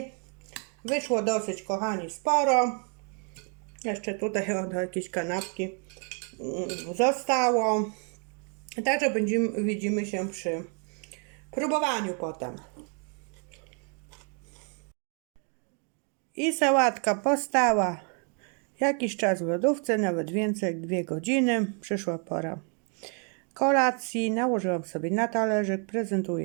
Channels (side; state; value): left; quieter; 39.9 dB